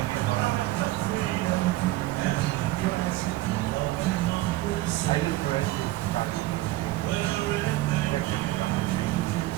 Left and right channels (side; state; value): left; quieter; 17.4 dB